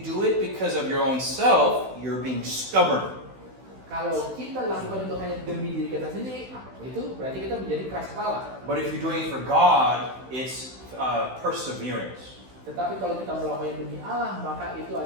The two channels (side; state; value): left; late; 16 ms